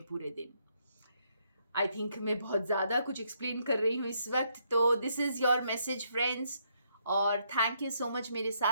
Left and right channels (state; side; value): inverted; both; correlation -0.74